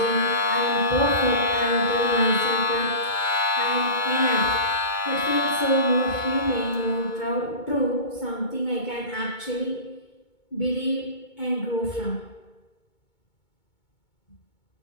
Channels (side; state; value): right; late; 2.2 ms